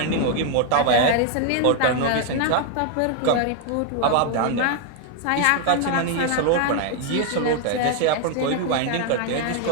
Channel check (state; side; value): different; both; correlation 0.00